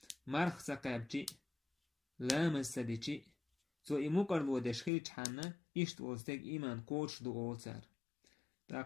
مرخ سقابتي لا مسدتي سو إمو قربو دشخيج حانا إشت وستيق إيمان كوش دو أولتار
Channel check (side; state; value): right; drops out; at 4.9 s